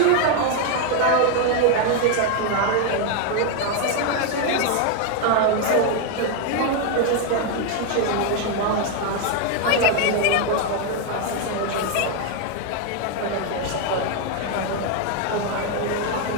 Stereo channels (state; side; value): different; both; correlation 0.01